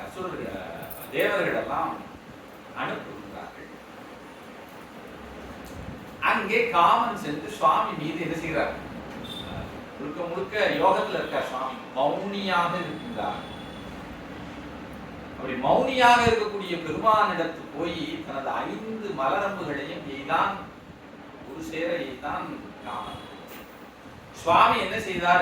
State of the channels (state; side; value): identical; both; correlation 1.00